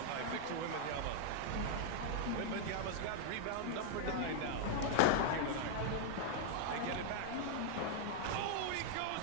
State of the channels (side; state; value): both; different; correlation -0.01